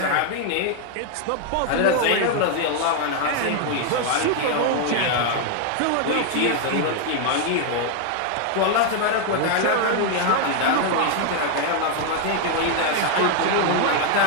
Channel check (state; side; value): different; both; correlation 0.00